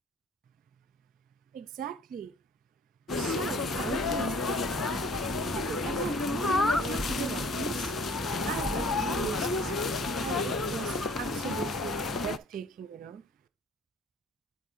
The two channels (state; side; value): normal; both; correlation 0.52